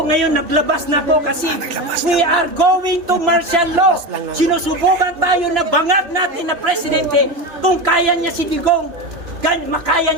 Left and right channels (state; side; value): late; left; 3.0 ms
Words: ngayon naglabas na ako kasi we are going to martial law. Sinusubukan tayo na bangag natin na presidente kung kaya niya si Digong, makaya